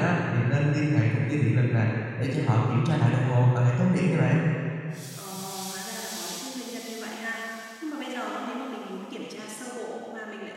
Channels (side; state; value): both; identical; correlation 1.00